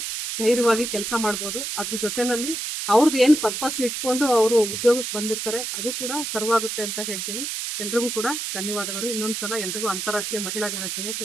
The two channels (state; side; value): noise; right; hiss, 4 dB below the sound